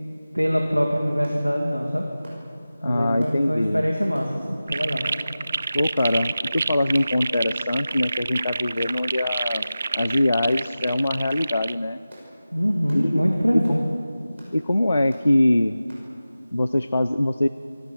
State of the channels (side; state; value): both; inverted; correlation -0.95